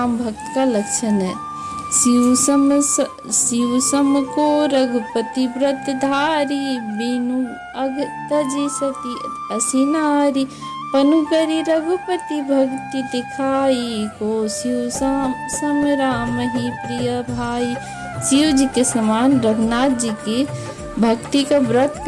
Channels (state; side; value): identical; both; correlation 1.00